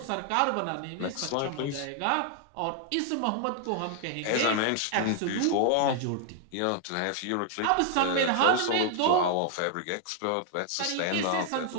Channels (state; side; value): different; both; correlation 0.00